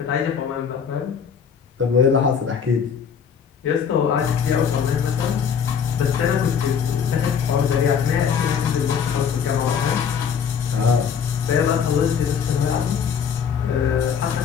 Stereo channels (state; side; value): quieter; right; 7.1 dB